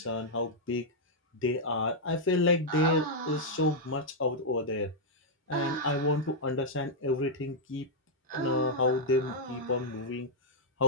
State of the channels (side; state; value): both; normal; correlation -0.05